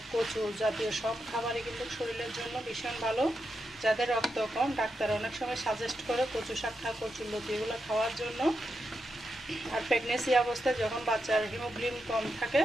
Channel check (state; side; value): normal; both; correlation 0.86